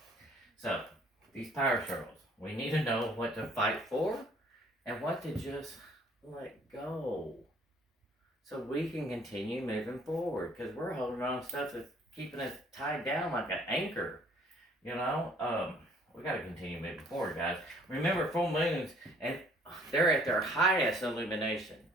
So, these power struggles, we need to know what to fight for and what to just let go so we can continue moving forward, because we're holding on to stuff that's keeping us tied down like an anchor. We got to continue moving forward, guys. Remember, full moons, and they're at their highest illumination.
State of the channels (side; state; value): both; normal; correlation 0.59